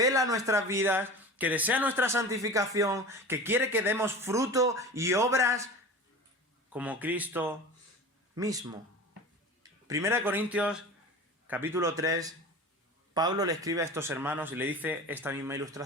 nuestras vidas, que desea nuestra santificación, que quiere que demos fruto y obras como Cristo mismo. 1 Corintios, capítulo 3, Pablo le escribe a estos hermanos y le dice esta misma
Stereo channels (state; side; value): normal; both; correlation 0.34